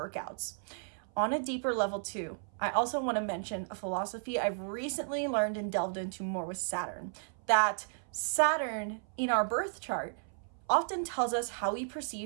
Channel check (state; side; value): silent; left; 55 dB below the other